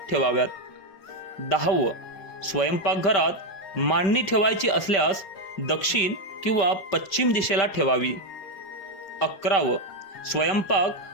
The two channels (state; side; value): late; right; 5.2 ms